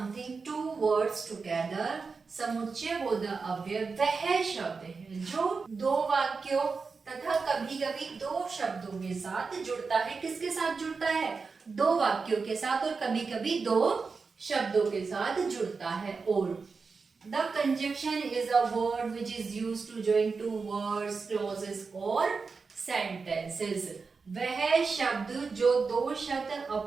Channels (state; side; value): quieter; left; 4.7 dB